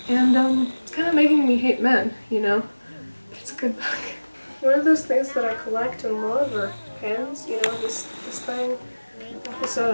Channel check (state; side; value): inverted; both; correlation -1.00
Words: and it's kind of making me hate men, you know. It's a good book. One of those things that I collect and love are pens. You know, this thing. This is